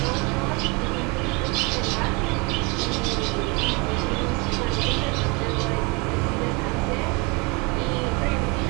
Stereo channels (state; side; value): quieter; left; 28.8 dB